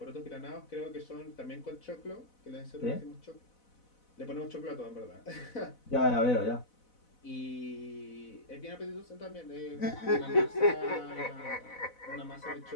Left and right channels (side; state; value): right; late; 4.0 ms